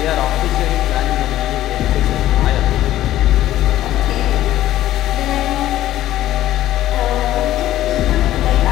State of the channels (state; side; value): quieter; right; 13.8 dB